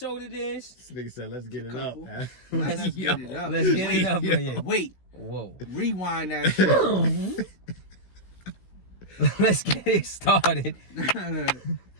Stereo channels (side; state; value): right; late; 16 ms